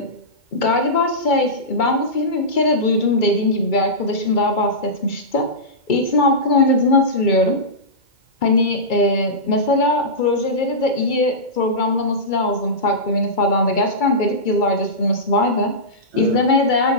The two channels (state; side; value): late; right; 2.2 ms